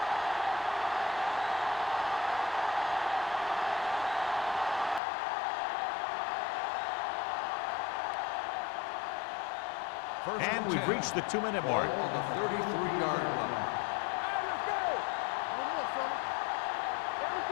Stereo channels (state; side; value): drops out; right; at 5.0 s